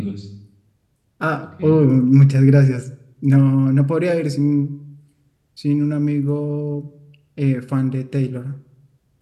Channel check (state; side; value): identical; both; correlation 1.00